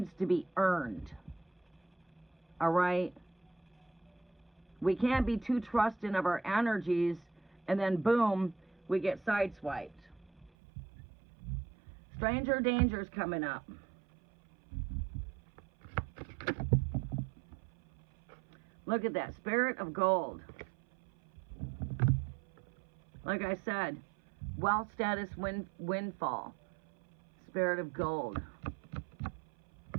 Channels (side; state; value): left; drops out; at 10.5 s